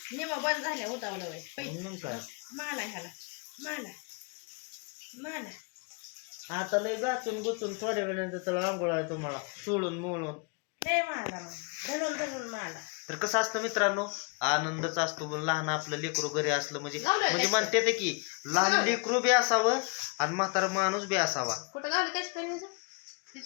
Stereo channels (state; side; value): quieter; right; 34.5 dB